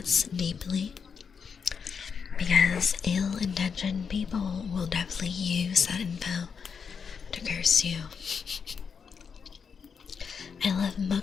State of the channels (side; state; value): right; quieter; 6.2 dB